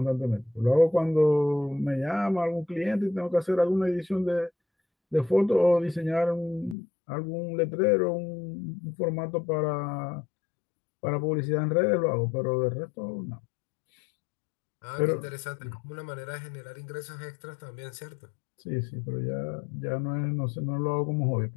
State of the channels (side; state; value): right; drops out; at 6.8 s